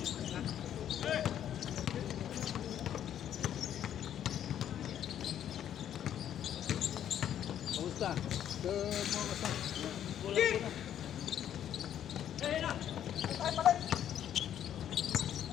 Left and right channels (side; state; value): right; quieter; 10.3 dB